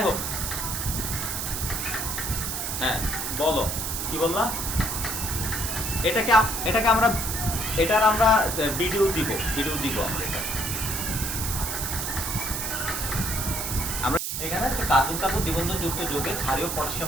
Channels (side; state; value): right; noise; hiss, 3 dB below the sound